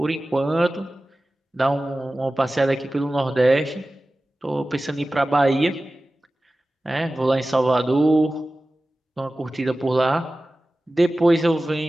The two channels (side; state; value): both; normal; correlation 0.96